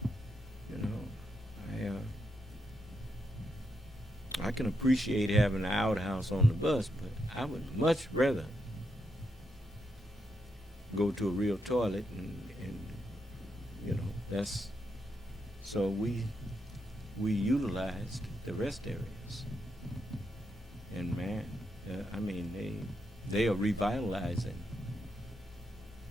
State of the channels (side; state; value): both; normal; correlation 0.83